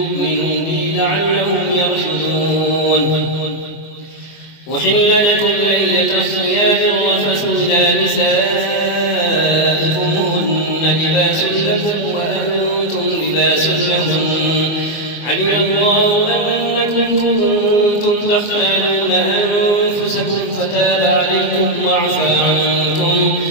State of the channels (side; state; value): right; late; 24 ms